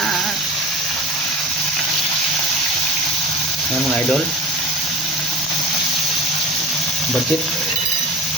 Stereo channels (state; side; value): normal; both; correlation 0.36